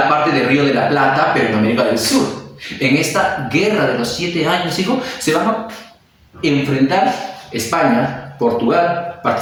parte del Río de la Plata, pero en América del Sur. En esta guerra de los 7 años, hijo, se van a enfrentar España, Portugal,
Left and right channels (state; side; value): identical; both; correlation 1.00